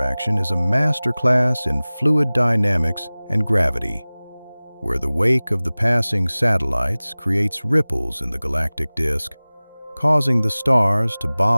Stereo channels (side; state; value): both; inverted; correlation -0.99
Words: is a masterclass in fluid dynamics and gravity, where the wake of the passing satellites creates ripples in the galactic disk, causing the stars to